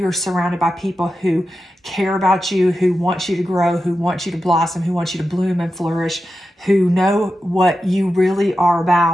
surrounded by people who care about you, who want you to grow, who want you to blossom, who want you to bloom and flourish, who know what you really are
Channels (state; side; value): normal; both; correlation 0.91